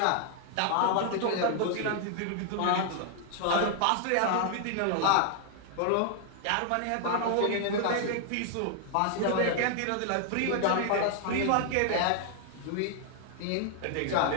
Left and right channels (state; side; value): different; both; correlation 0.00